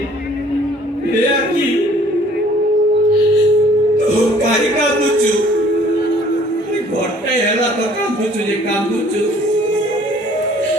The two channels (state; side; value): normal; both; correlation 0.56